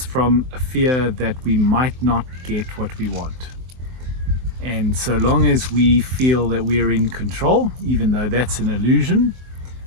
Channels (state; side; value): late; left; 23 ms